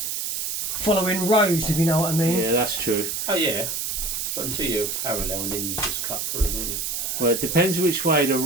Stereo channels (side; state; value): right; noise; hiss, 2 dB below the sound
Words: following rows, if you know what I mean. Yeah, that's true. Oh yeah. So until you're parallel and then you just cut through, don't you? Well, it depends which way